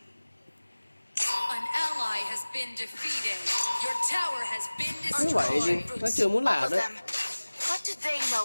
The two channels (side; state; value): both; inverted; correlation -1.00